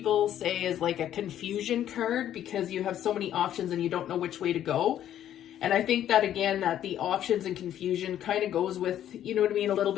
say is like a confusion card, because you have so many options and you don't know which way to go. And I think that, again, that the options and confusion kind of goes with, you know what I mean, a little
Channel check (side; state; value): right; quieter; 11.1 dB